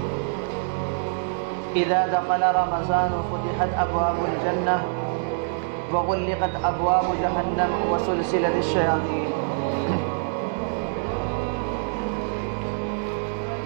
إذا دخل رمضان فتحت أبواب الجنة وغلقت أبواب جهنم وسلسلة الشياطين.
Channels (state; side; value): silent; left; digital silence